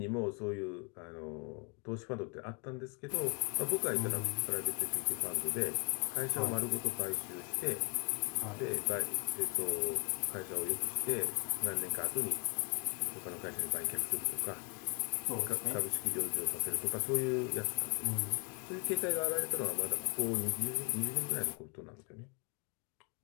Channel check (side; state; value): right; quieter; 37.0 dB